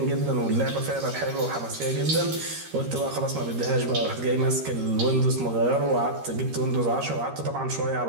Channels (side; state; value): left; late; 13 ms